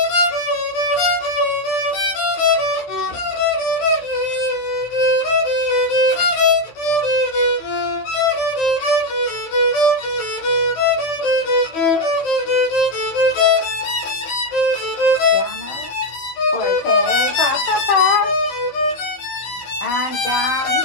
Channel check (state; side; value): late; right; 15 ms